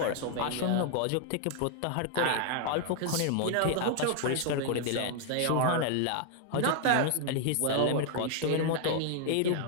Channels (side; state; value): both; different; correlation 0.00